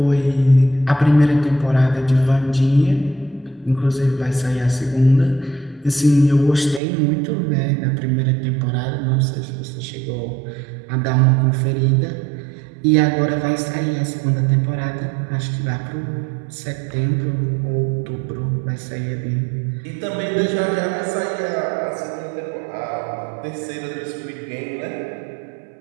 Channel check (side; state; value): left; drops out; at 6.8 s